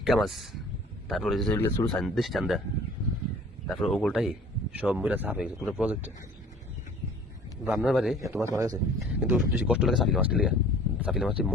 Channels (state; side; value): normal; both; correlation 0.49